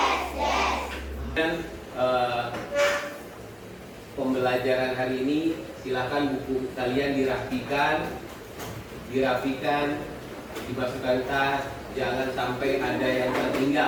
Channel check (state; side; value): identical; both; correlation 1.00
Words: Dan pembelajaran hari ini silakan buku kalian dirapikan, dimasukkan tas, jangan sampai ada yang